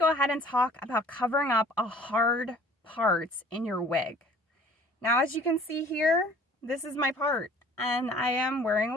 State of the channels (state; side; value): normal; both; correlation 0.51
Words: ahead and talk about covering up a hard part in your wig. Now, as you can see here, this is my part, and I am wearing